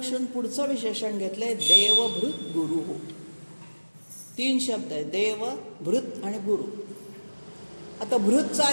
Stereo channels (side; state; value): both; inverted; correlation -1.00